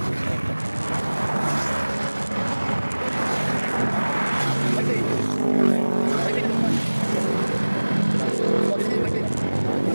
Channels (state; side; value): inverted; both; correlation -1.00